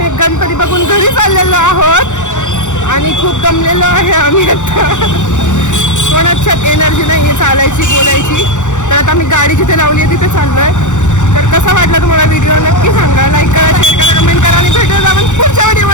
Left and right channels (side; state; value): right; late; 0.85 ms